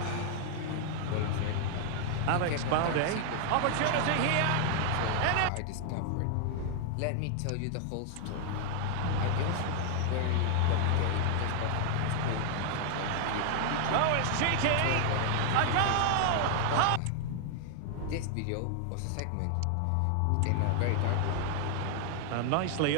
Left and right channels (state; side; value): different; both; correlation 0.00